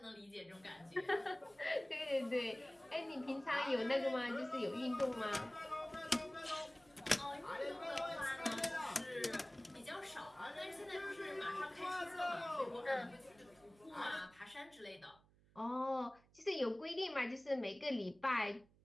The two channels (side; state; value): right; noise; hum, 29 dB below the sound